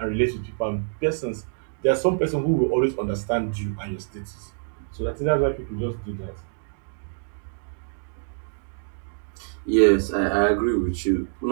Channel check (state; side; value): silent; left; digital silence